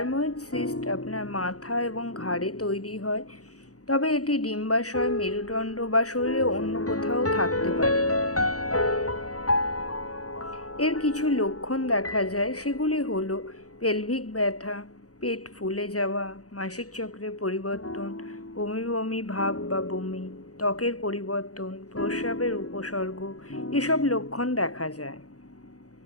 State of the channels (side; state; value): right; late; 0.67 ms